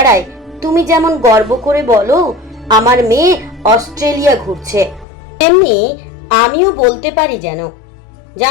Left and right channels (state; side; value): drops out; right; at 5.1 s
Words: তুমি যেমন গর্ব করে বলো আমার মেয়ে অস্ট্রেলিয়া ঘুরছে, তেমনি আমিও বলতে পারি যেন।